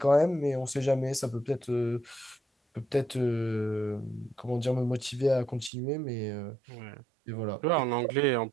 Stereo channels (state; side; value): drops out; left; at 5.7 s